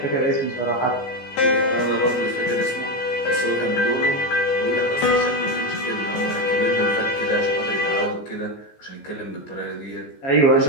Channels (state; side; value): late; right; 15 ms